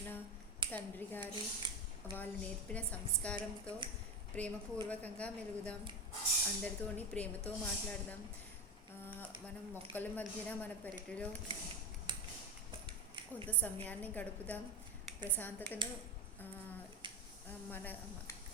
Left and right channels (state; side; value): normal; both; correlation 0.21